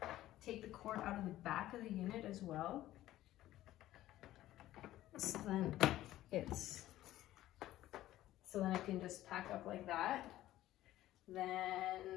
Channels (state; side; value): quieter; right; 14.5 dB